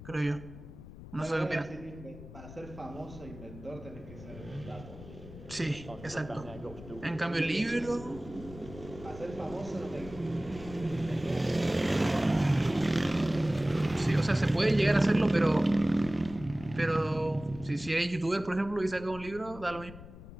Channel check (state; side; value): noise; left; rumble, 15 dB below the sound